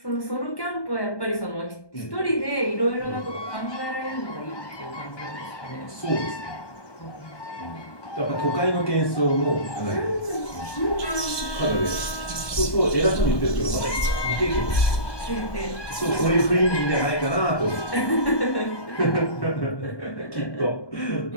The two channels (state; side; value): late; right; 1.2 ms